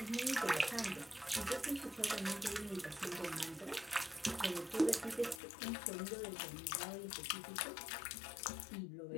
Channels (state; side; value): drops out; right; at 5.4 s